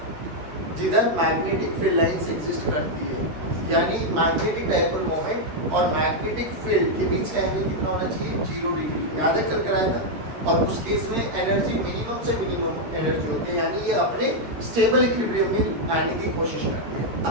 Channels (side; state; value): left; late; 13 ms